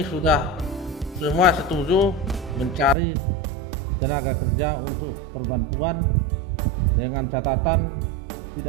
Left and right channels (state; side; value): drops out; left; at 3.0 s